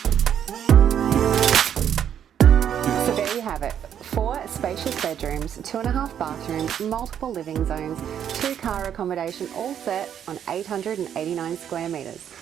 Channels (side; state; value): left; quieter; 9.2 dB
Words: So there you have it. 4 spacious bedrooms, 2.5 bathrooms, multiple living zones, 2 car accommodation, all set on 889 square metres.